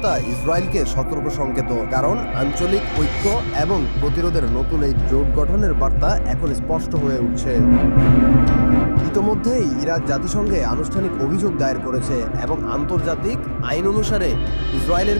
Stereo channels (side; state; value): both; inverted; correlation -1.00